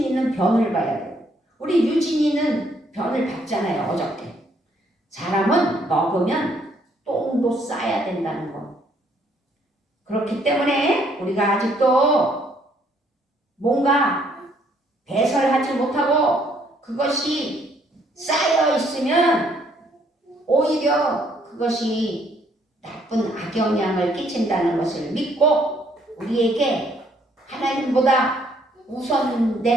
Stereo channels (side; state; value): both; normal; correlation 0.67